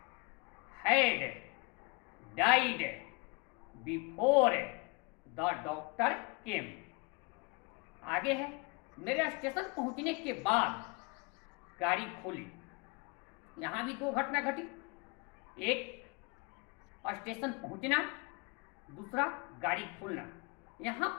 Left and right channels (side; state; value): right; quieter; 29.7 dB